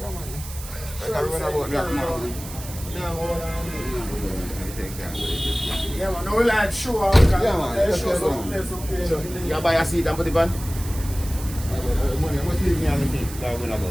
Yeah, man. No, we like show. Yeah, man. So, you buy a seat and put it on?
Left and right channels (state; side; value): noise; right; hiss, 13 dB below the sound